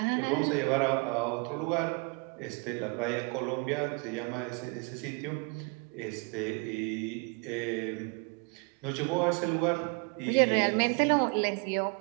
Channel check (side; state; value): left; quieter; 31.9 dB